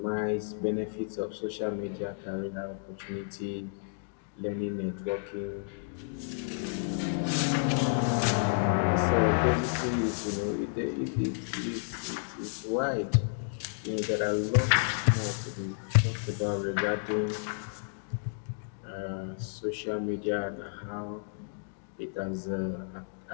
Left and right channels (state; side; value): silent; right; digital silence